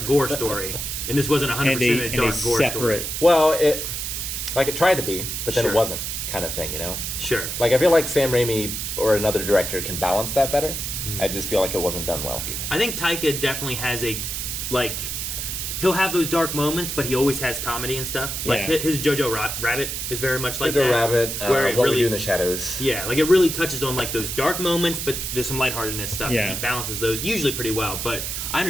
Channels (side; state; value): right; noise; hiss, 4 dB below the sound